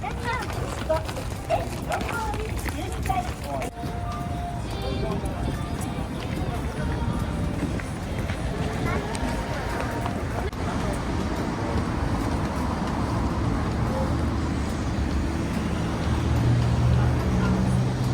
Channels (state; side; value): identical; both; correlation 1.00